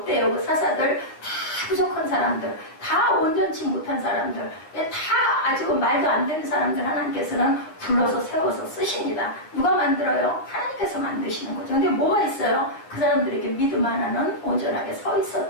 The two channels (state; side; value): late; right; 9.6 ms